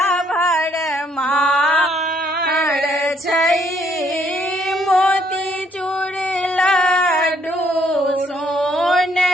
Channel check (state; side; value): normal; both; correlation 0.68